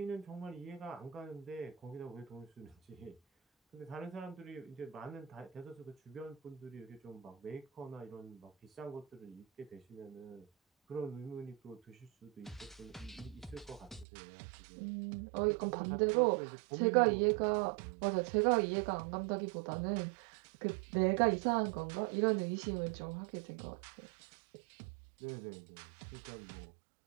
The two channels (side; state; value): left; drops out; at 14.1 s